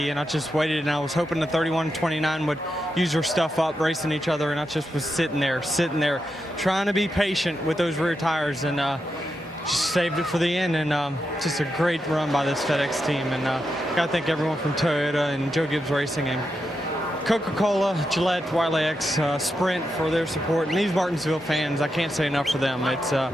And I just waited, and I was hoping the 31-29 would use their stuff up, racing each other. And I just was sitting there, trying to be patient with those rear tires, and just saved it for the end. And just a great run by this FedEx team. And got to thank everyone from Toyota and Joe Gibbs Racing and Coca-Cola, Gillette, Wiley X, Sprint for their support. And these Martinsville fans, I can't say enough for them.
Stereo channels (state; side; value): normal; both; correlation 0.86